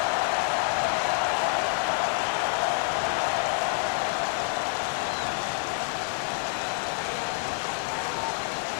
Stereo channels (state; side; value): silent; right; 60 dB below the other